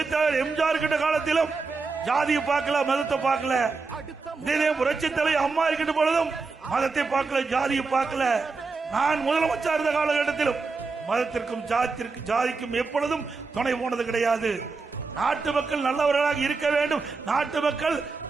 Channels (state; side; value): quieter; left; 4.3 dB